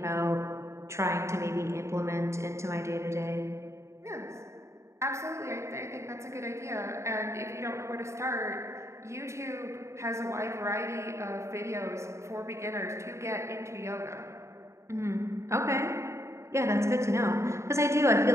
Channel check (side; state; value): left; late; 0.14 ms